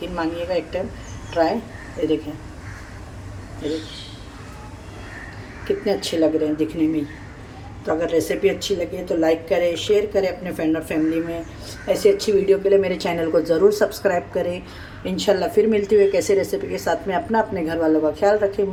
मानिएगा, एक टाइम ट्राई। ये देखें, ये देखें कितने अच्छे लग रहे हैं दिखने में। तो अगर रेसिपी अच्छी लगे तो लाइक करें, शेयर करें अपने फ्रेंड और फैमिली में। ऐसी अच्छी वीडियो के लिए मेरे चैनल को ज़रूर सब्सक्राइब करें। इंशाल्लाह फिर मिलती हुई कैसे रेसिपी के साथ में। अपने घर वालों का ख्याल रखें,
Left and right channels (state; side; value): identical; both; correlation 1.00